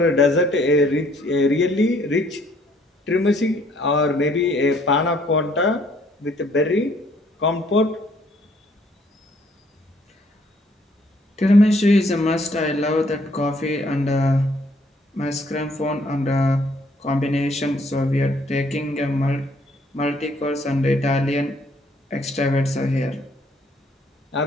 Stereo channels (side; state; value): both; normal; correlation 0.64